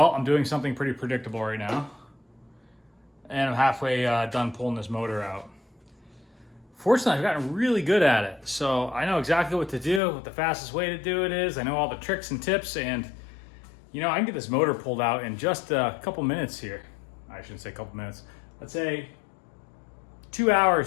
I'm doing something pretty predictable right now. And I'm halfway done pulling this motor out. Fortunately, I've gotten really good at it. So I know exactly what to do, what the fastest way to do it is. I know all the tricks and tips, and you know, I can get this motor pulled out in just a couple minutes here. I shouldn't say a couple minutes. Let's say 2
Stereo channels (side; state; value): right; drops out; at 10.0 s